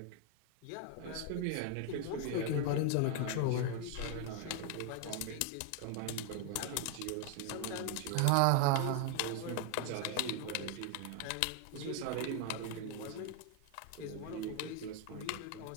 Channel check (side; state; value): both; different; correlation 0.00